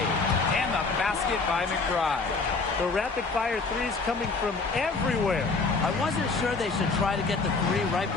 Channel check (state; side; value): quieter; right; 4.1 dB